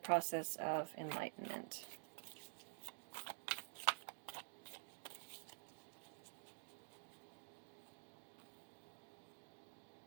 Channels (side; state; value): left; silent; digital silence